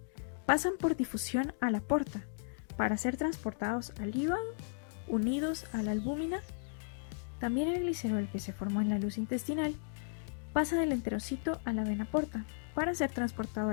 pasan por difusión a la porta para ser transportados al hígado, unidos a la albúmina. También el glicerol que se formó en la luz intestinal pasa del enterocito a la vena porta para ser transportado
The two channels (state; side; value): silent; right; digital silence